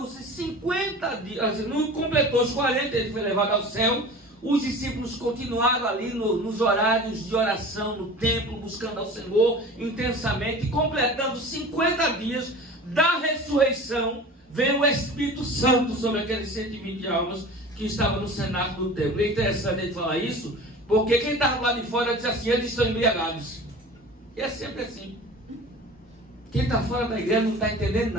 50 dias, não completou os 40, ele foi levado ao céu. Os discípulos continuaram ali nos horários de oração, no templo, buscando ao Senhor intensamente. E completando 50 dias da ressurreição, veio o Espírito Santo sobre aqueles 120 almas que estavam no cenáculo do templo. É interessante ele falar isso, porque quem estava lá de fora disse assim: eles estão embriagados. E é sempre assim. Quem está fora da igreja não está entendendo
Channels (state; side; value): normal; both; correlation 0.38